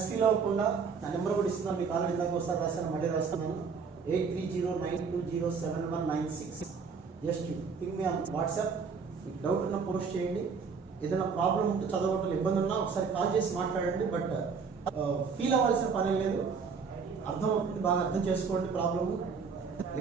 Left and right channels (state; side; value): quieter; left; 5.5 dB